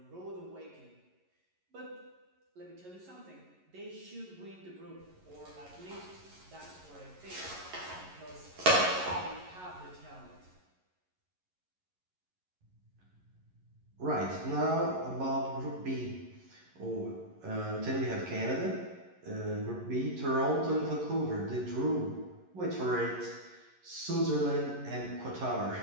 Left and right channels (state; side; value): late; left; 11 ms